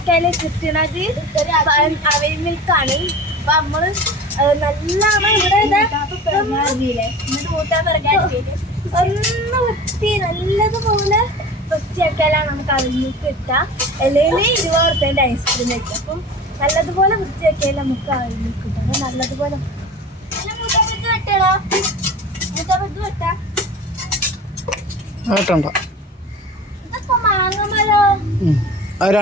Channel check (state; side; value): normal; both; correlation 0.36